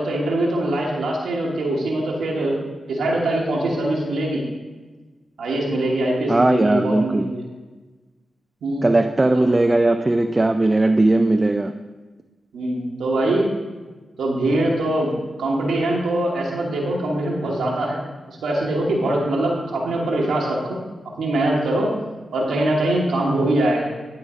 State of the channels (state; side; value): normal; both; correlation 0.91